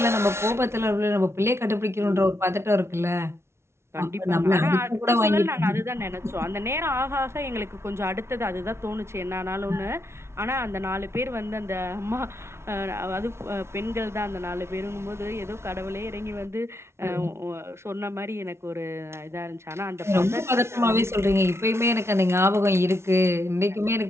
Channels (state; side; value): late; left; 0.13 ms